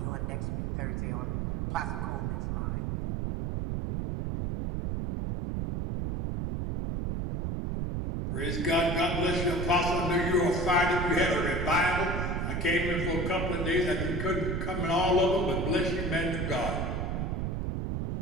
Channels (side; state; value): right; noise; rumble, 1 dB below the sound